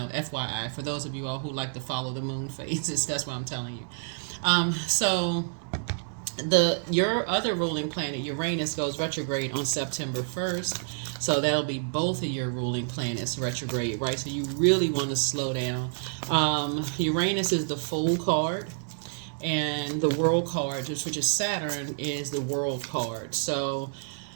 FYI, for those of you all who like to follow the moon phases, that's what I'm telling you. So your other ruling planet, Uranus, goes retrograde on September 1st. So that'll be both of your ruling planets retrograde, right? So you really want to slow down. Uranus is the Fool card, and the World card, which is Saturn, is the World card. So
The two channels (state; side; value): silent; left; digital silence